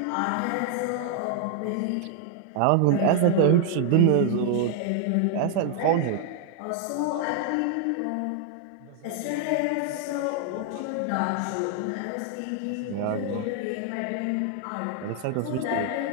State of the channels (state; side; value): different; both; correlation 0.00